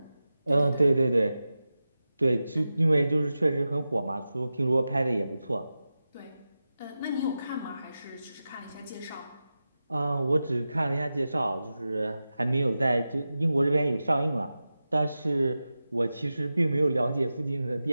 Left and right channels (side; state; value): both; inverted; correlation -0.93